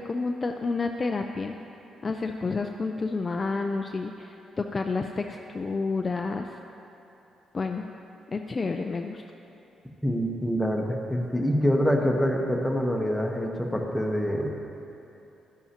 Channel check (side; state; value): both; normal; correlation 0.90